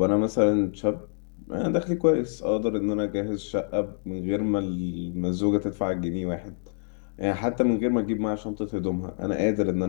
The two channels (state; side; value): silent; right; digital silence